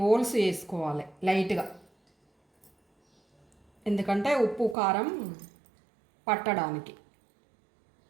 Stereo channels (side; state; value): left; drops out; at 4.8 s